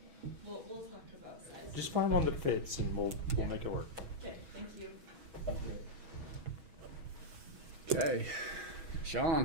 We'll talk about size. Just find one that fits, and we'll make it work. Okay, thank you. Okay,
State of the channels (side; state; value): left; late; 6.2 ms